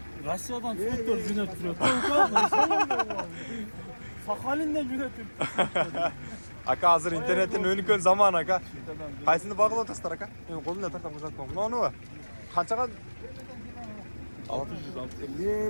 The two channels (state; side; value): inverted; both; correlation -1.00